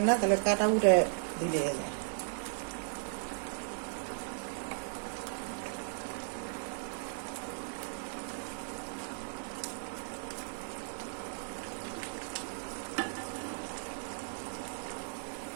না তাহলে কাটা উঠে দিলে যায়।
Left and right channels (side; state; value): left; silent; digital silence